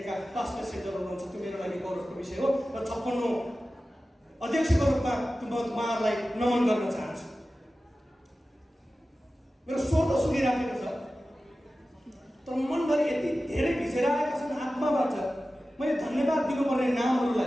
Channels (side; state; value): both; normal; correlation 0.95